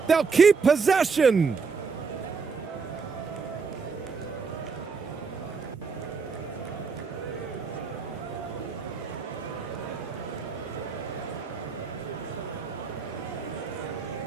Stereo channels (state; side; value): quieter; left; 5.1 dB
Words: They'll keep possession.